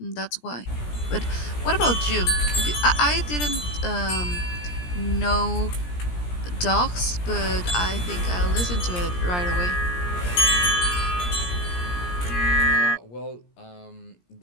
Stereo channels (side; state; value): right; late; 17 ms